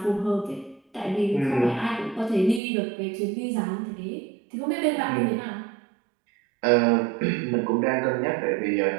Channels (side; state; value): left; drops out; at 2.6 s